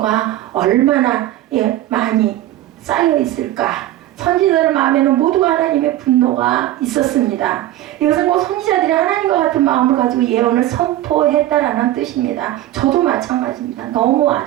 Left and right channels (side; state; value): left; quieter; 14.3 dB